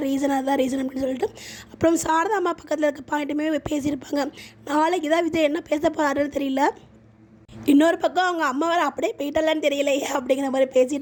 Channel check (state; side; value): identical; both; correlation 1.00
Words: ரீசன், அதுதான் ரீசன் அப்படின்னு சொல்லிட்டு. அப்புறம் சாரதா அம்மா பக்கத்தில் இருக்க பாயிண்ட்டுமே பேசியிருப்பாங்க. நாளைக்கு தான் விஜய் என்ன பேச போகிறாருன்னு தெரியல. இன்னொரு பக்கம் அவங்க அம்மா வேறு அப்படியே போயிட்டலான்னு தெரியலையே அப்படிங்கிற மாதிரி